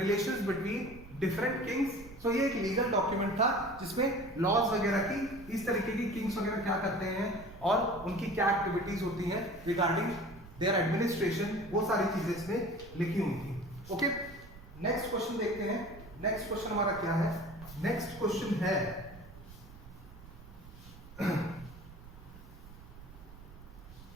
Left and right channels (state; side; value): noise; right; rumble, 17 dB below the sound